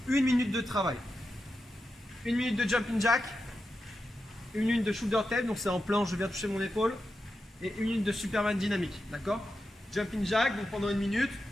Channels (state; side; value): normal; both; correlation 0.89